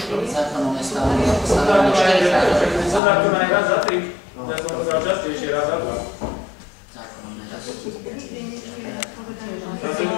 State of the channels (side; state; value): right; drops out; at 3.0 s